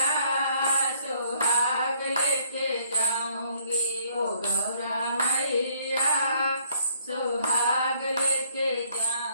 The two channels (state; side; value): inverted; both; correlation -0.64